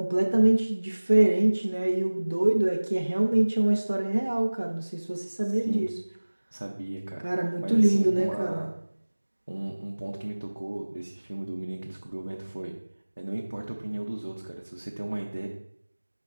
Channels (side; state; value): both; inverted; correlation -1.00